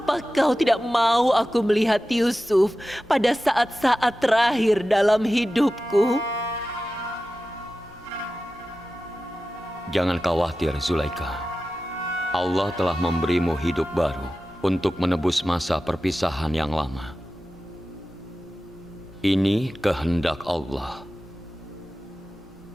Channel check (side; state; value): both; normal; correlation 0.94